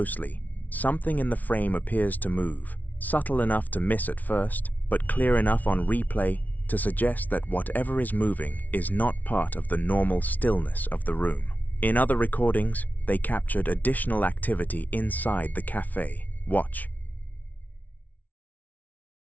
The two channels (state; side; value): late; right; 0.076 ms